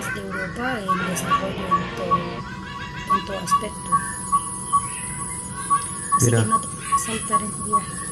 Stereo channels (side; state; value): both; identical; correlation 1.00